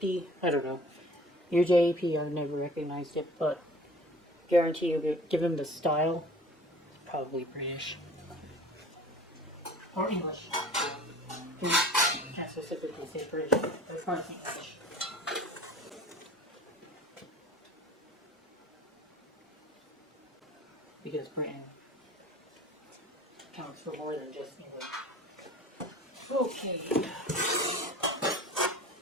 I don't know. UJEP, I've never recognized it, but guarantee you, given the style, it's probably British. Or English. Can't specifically say British, but it's not English. Because Britain counts for more than just England. Okay.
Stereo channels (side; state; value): both; normal; correlation 0.45